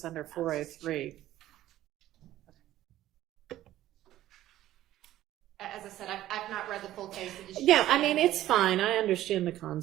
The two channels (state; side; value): quieter; left; 13.9 dB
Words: under 403. As I said, I've not read the full case. Yeah, it's fine. I understand the